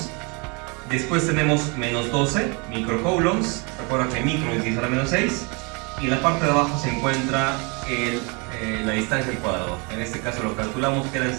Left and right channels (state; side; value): quieter; left; 31.3 dB